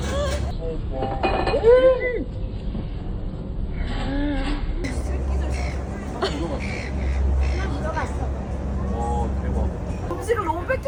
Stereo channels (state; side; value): identical; both; correlation 1.00